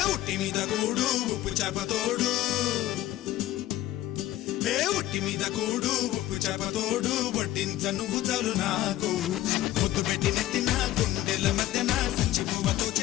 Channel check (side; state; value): right; quieter; 14.5 dB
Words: ఒట్టి మీద కూడు ఉప్పు చేప తోడు ఒట్టి మీద కూడు ఉప్పు చేప తోడు వడ్డించ నువ్వు చాలు నాకు ముద్దు పెట్టి నెత్తిన గుండెల మధ్యన సంచి పువ్వ